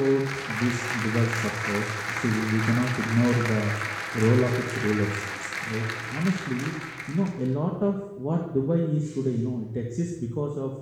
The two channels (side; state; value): both; identical; correlation 1.00